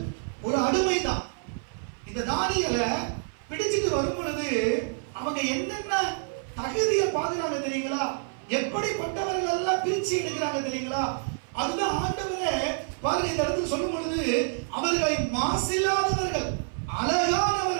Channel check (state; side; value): silent; left; 55 dB below the other